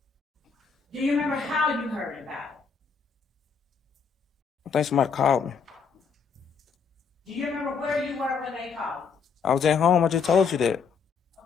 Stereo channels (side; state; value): right; quieter; 5.9 dB